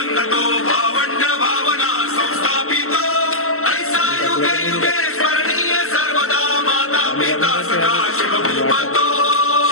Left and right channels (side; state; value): right; late; 0.63 ms